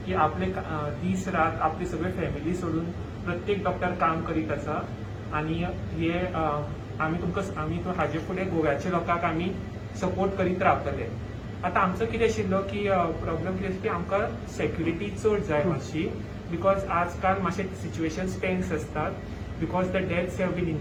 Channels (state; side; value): identical; both; correlation 1.00